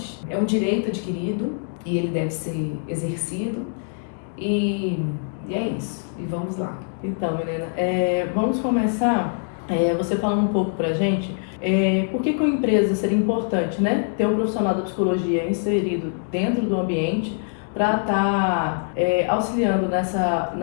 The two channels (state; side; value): silent; right; digital silence